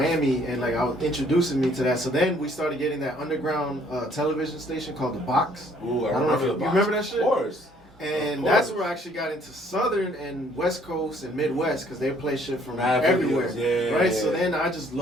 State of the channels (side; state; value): both; normal; correlation 0.61